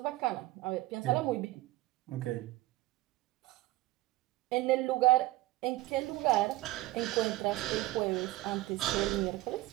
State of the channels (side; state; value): left; quieter; 17.8 dB